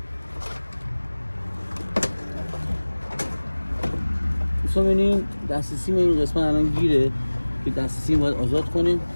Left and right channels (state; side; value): inverted; both; correlation -1.00